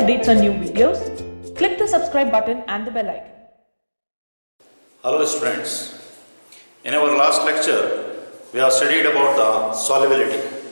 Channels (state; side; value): inverted; both; correlation -1.00